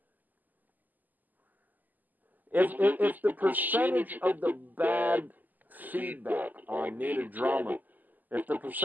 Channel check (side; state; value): left; late; 0.084 ms